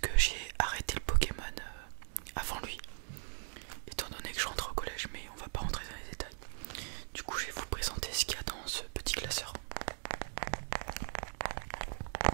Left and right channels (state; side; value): silent; left; digital silence